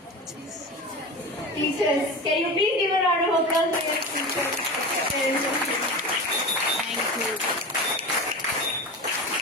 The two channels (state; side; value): normal; both; correlation 0.28